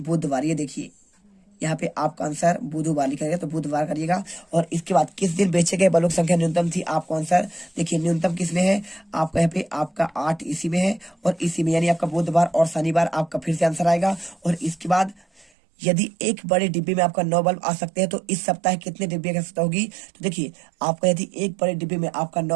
ये देखिए यहाँ पे आपका आंसर बुधवार लिखा गया तो बुधवार करिएगा। और इसके बाद किस दिन बेचे गए बल्बों की संख्या न्यूनतम थी, आपको आंसर देखिए न्यूनतम किस में है, आपका यहाँ पे आपका 8 इसी में है और इसी में, यानी आपका बुधवार और शनिवार आपका फिर से आंसर आएगा। और इसके बाद यदि एक बड़े डिब्बे में आपका 9 बल्ब आ सकते हैं तो इस सप्ताह कितने डिब्बे की आवश्यकता होगी। तो देखिए आपका यदि एक बड़े डिब्बे में आपका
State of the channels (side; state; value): left; drops out; at 15.5 s